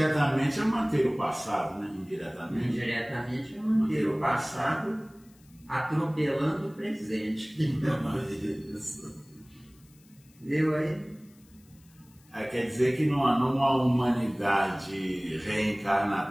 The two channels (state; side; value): noise; left; hiss, 30 dB below the sound